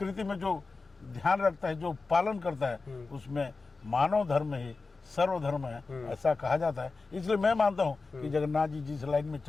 में जो ध्यान रखता है, जो पालन करता है, उसमें मानव धर्म ही सर्वधर्म है, ऐसा कहा जाता है। इसलिए मैं मानता हूँ कि जगन्नाथ जी जिस लाइन में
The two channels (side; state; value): right; quieter; 4.0 dB